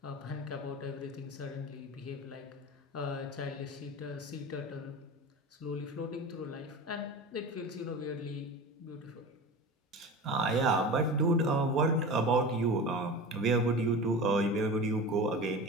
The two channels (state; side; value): normal; both; correlation 0.31